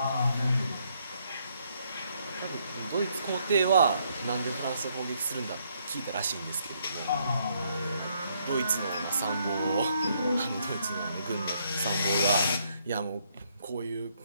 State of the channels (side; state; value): both; inverted; correlation -0.72